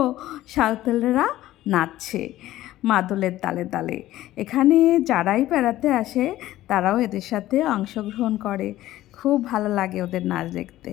সাঁওতালরা নাচছে মাদলের তালে তালে। এখানে যারাই বেড়াতে আসে তারাও এদের সাথে অংশগ্রহণ করে, খুব ভালো লাগে ওদের নাচ দেখতে।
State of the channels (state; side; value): quieter; right; 14.9 dB